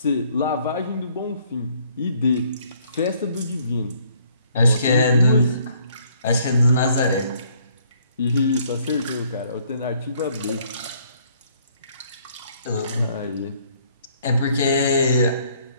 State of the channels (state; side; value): inverted; both; correlation -0.64